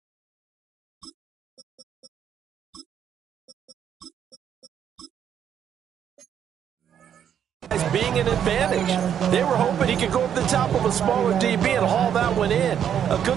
As being an advantage. They were hoping he could go up the top of a smaller DB and haul that one in. A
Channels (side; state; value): left; quieter; 9.1 dB